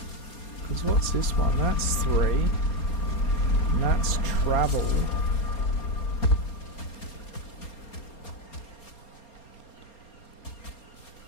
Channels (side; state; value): right; late; 4.3 ms